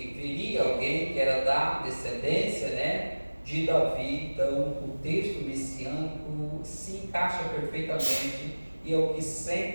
viria alguém que era da descendência, né, de Davi. Então o texto messiânico se encaixa perfeitamente, e é o que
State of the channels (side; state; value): both; inverted; correlation -1.00